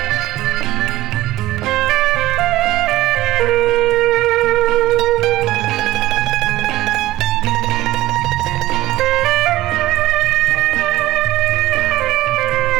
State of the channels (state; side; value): quieter; left; 16.1 dB